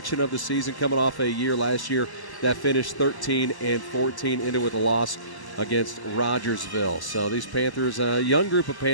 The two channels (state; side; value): late; right; 1.0 ms